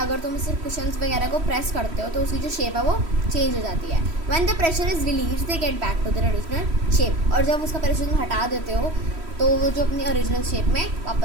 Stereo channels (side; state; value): left; late; 3.1 ms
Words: अगर तुम सिर्फ कुशन्स वगैरह को प्रेस करते हो तो उसकी जो शेप है वो चेंज हो जाती है. When the pressure is release they get back to their original shape. और जब उसका प्रेशर तुम हटा देते हो तो वो जो अपनी ओरिजिनल शेप में